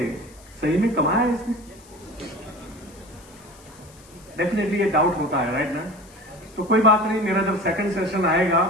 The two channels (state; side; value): noise; left; hiss, 25 dB below the sound